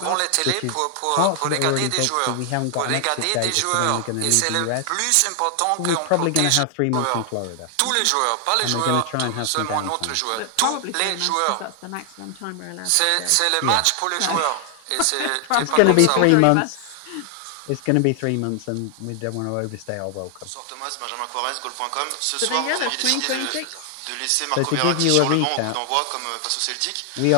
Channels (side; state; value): both; different; correlation 0.00